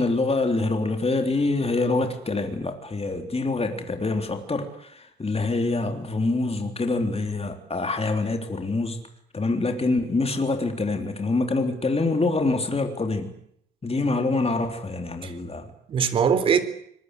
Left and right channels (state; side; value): normal; both; correlation 0.68